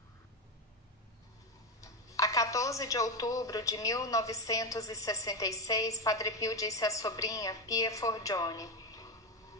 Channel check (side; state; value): both; normal; correlation 0.12